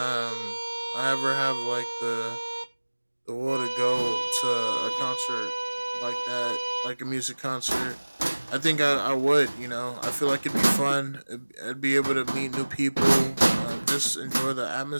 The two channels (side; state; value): both; inverted; correlation -1.00